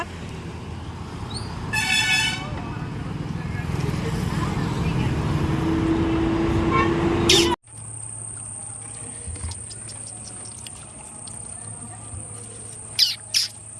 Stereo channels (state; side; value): identical; both; correlation 1.00